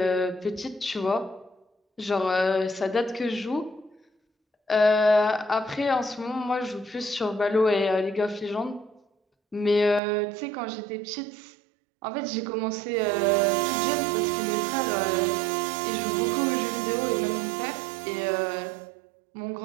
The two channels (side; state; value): left; drops out; at 10.0 s